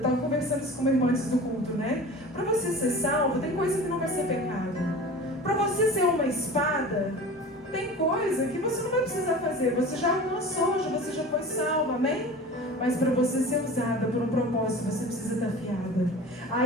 conversando isso com meu irmão antes do culto, né? Para você ser salvo, tem coisa que não vai ser pecado. Para você ser uma espada, tem coisa que você não vai precisar fazer. Você já alcançou, você já foi salvo, amém? Mas para você ser usada por um propósito, você precisa estar afiada.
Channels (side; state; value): both; normal; correlation 0.37